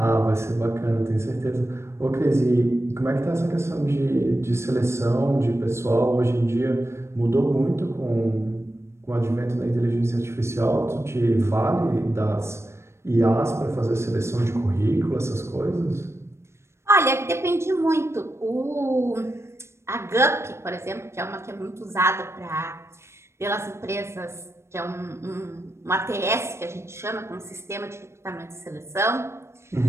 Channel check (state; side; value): late; left; 0.13 ms